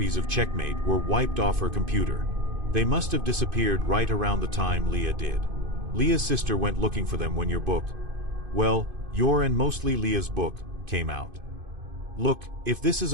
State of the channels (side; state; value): left; late; 2.5 ms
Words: of Checkmate were wiped off her computer. They must have disappeared right around the time Leah did. Leah's sister went looking for them when your book, well, your and mostly Leah's book, came out. Look, if this is